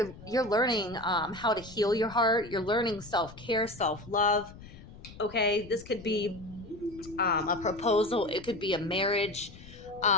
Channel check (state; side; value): noise; left; rumble, 18 dB below the sound